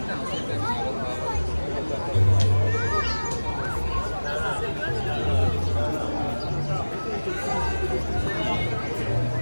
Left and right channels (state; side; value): inverted; both; correlation -1.00